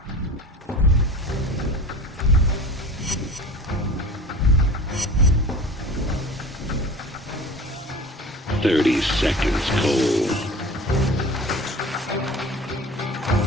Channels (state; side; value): normal; both; correlation 0.38